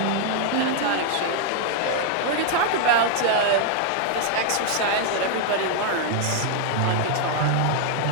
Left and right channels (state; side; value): different; both; correlation 0.00